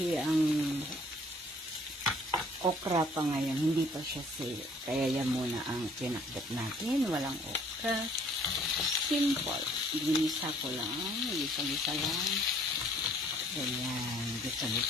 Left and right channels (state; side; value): normal; both; correlation 0.59